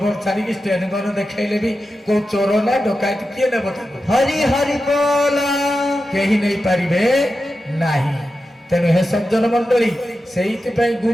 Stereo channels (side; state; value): both; normal; correlation 0.91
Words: ଛାଡିକି ଷ୍ଟେନ୍ ଗନ୍ ଦେଖେଇଲେ ବି କୋଉ ଚୋର ନା ଡକାୟତ କିଏ ନେବ ତାକୁ? ହରି ହରି ବୋଲ କେହି ନେଇପାରିବେ ନାହିଁ। ତେଣୁ ହେ ସଜ୍ଜନ ମଣ୍ଡଳୀ, ସେଇଥିପାଇଁ